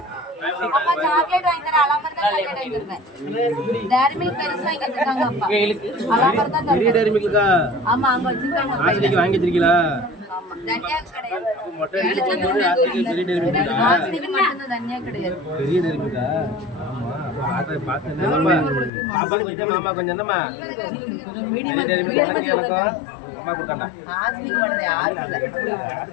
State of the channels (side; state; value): right; drops out; at 18.9 s